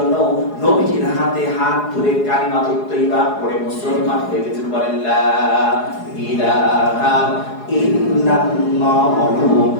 নবীজির হাতে হাত ধরে কালিমাতুত তাইয়্যিবা পড়ে মুসলমান হয়ে গেছেন। বলেন লা ইলাহা ইল্লাল্লাহু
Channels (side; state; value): right; late; 4.8 ms